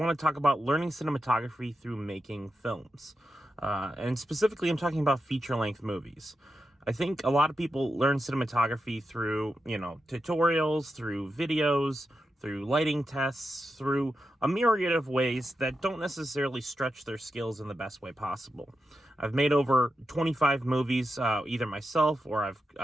to talk about learning cinematography through making films. And specifically, I'm talking about feature-length movies. I think a lot of people learn cinematography through, tutorials, through videos, through lighting tests, through a myriad of ways that don't necessarily stretch their skills in the best way possible. I've made over 25 movies, either myself or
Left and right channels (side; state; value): both; normal; correlation 0.89